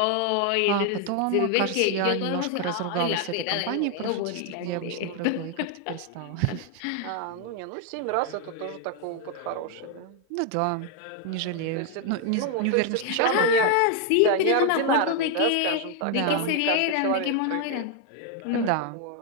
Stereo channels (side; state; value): both; different; correlation 0.00